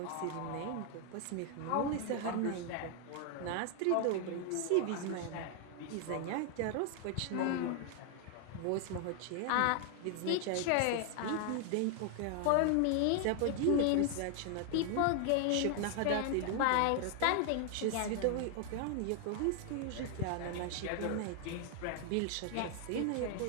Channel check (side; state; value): both; different; correlation 0.00